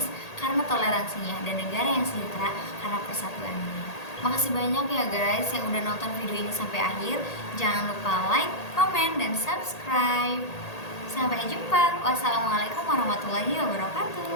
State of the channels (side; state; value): right; late; 1.8 ms